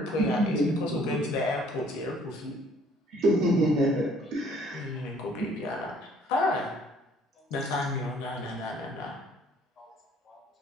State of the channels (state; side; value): normal; both; correlation 0.59